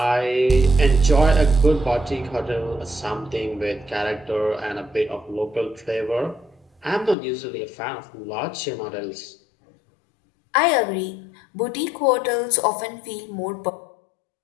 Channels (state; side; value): drops out; right; at 7.2 s